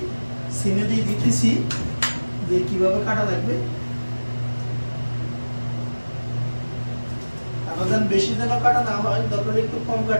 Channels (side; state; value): both; inverted; correlation -1.00